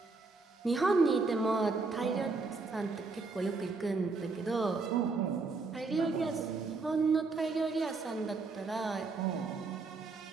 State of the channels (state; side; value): quieter; left; 4.0 dB